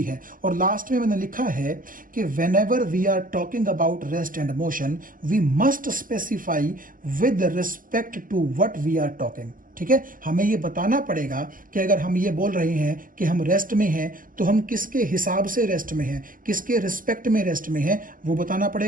है। और लास्ट में मैंने लिखा है कि whenever we are talking about rest and motion we must specify with respect to what we are talking. ठीक है, हमें ये बताना पड़ेगा कि अगर हम ये बोल रहे हैं कि हम रेस्ट में हैं तो हम किसके हिसाब से रेस्ट में हैं, किसके रिस्पेक्ट में रेस्ट में हैं, वो बताना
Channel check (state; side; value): late; left; 0.40 ms